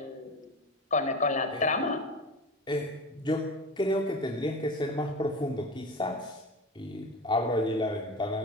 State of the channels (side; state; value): both; normal; correlation 0.28